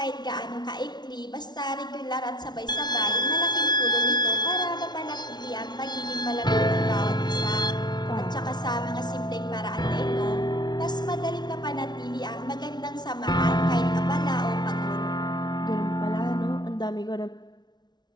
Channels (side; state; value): right; late; 0.20 ms